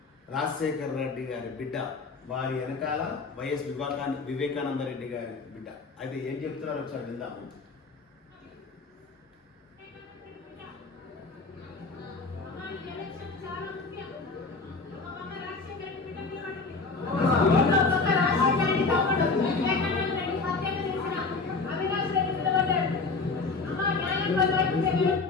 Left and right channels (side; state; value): right; quieter; 4.0 dB